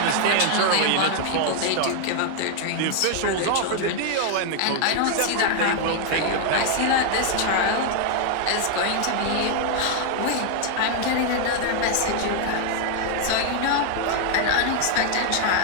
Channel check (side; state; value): both; different; correlation 0.00